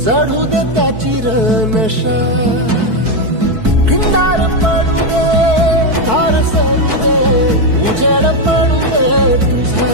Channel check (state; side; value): late; left; 4.6 ms